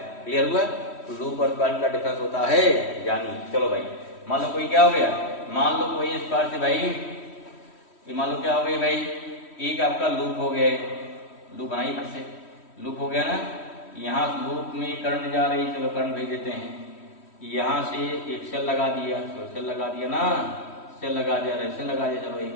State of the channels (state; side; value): late; right; 3.1 ms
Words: Clear हुआ, लूप और क्वाइल का डिफरेंस होता है, जानिए। चलो भाई, मान लो कोई क्या हो गया, मान लो कोई इस पार से भाई, ये मान लो क्या हो गई भाई, एक आपका लूप हो गया, लूप बनाइए फिर से, लूप हो गया ना, यहाँ लूप में करंट जा रही है, चलो करंट भेज देते हैं, यहाँ से एक सेल लगा दिया, तो सेल लगा दिया ना, सेल लगा दिया, रेजिस्टेंस लगा दिया, चलो